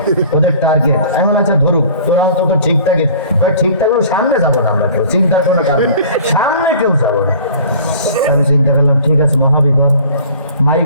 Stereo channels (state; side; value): inverted; both; correlation -0.48